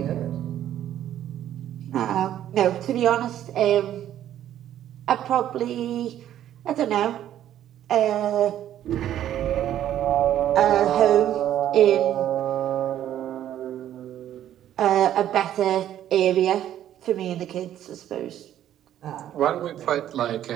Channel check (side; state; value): left; quieter; 11.5 dB